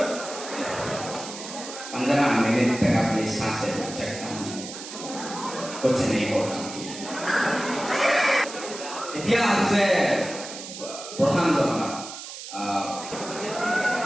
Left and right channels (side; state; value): right; noise; hiss, 11 dB below the sound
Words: 15 मिनट तक अपनी सांसें चकता हूं कुछ नहीं होता इतिहास से प्रधान जो